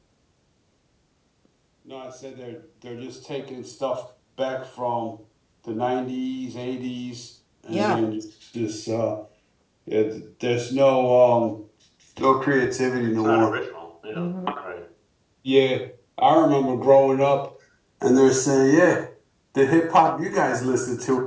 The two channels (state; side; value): identical; both; correlation 1.00